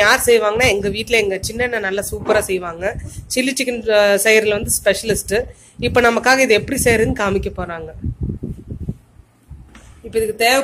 யார் செய்வாங்கன்னா எங்க வீட்டுல எங்க சின்ன நல்லா சூப்பரா செய்வாங்க. சில்லி சிக்கன் செய்யறதுல வந்து ஸ்பெஷலிஸ்ட். இப்ப நமக்காக இது எப்படி செய்யறதுன்னு காமிக்க போறாங்க. இப்ப இதுக்கு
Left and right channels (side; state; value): both; identical; correlation 1.00